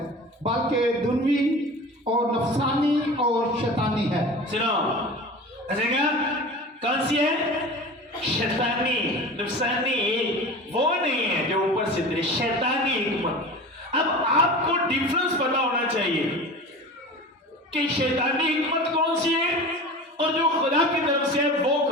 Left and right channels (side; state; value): both; normal; correlation 0.35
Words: बल्कि दुनवी और नफसानी और शैतानी है। सुनो, ऐसे क्या कौन सी है? शैतानी, नफसानी वो नहीं है जो ऊपर से उतरी, शैतानी हिकमत। अब आपको डिफरेंस पता होना चाहिए कि शैतानी हिकमत कौन सी है और जो खुदा की तरफ से है वो